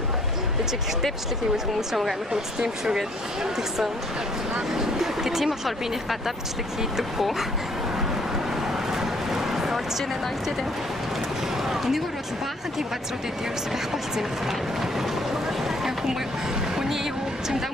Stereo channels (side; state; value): both; normal; correlation 0.61